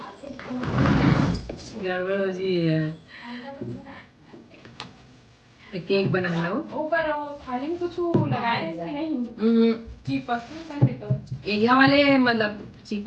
गड़बड़ हो जी है फिर केक बना लो। ऊपर थाली में कुछ लगाए हैं कि नहीं? चिपक एरिया वाले मतलब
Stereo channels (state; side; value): identical; both; correlation 1.00